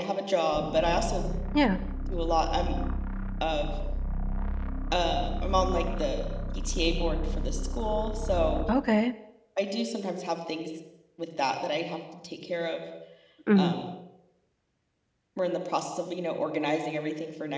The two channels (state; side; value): identical; both; correlation 1.00